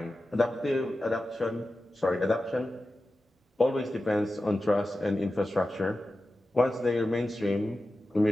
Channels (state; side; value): normal; both; correlation 0.93